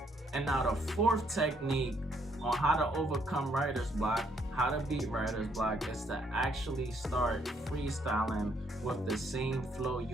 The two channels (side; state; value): both; normal; correlation 0.70